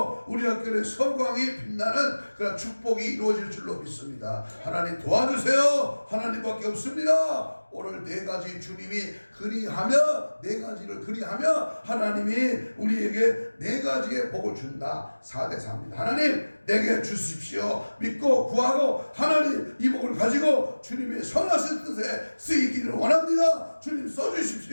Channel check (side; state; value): both; inverted; correlation -1.00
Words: 우리 학교의 서광이 빛나는 그런 축복이 이루어질 줄로 믿습니다. 하나님 도와주세요. 하나님밖에 없습니다. 오늘 4가지 주님이 그리하며 4가지를 그리하며 하나님이 우리에게 네 가지의 복을 준다. 4대 4입니다. 하나님 내게 주십시오. 믿고 구하고 하나님 이 복을 가지고 주님의 선하신 뜻에 쓰이기를 원합니다. 주님